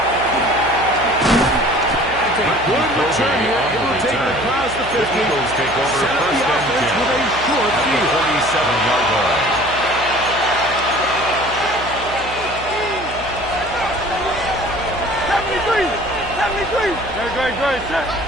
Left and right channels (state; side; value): noise; right; hum, 13 dB below the sound